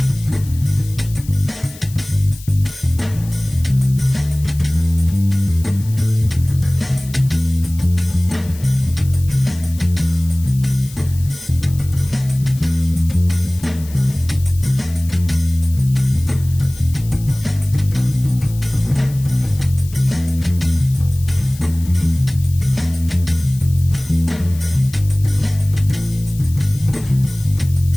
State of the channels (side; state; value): left; noise; hiss, 19 dB below the sound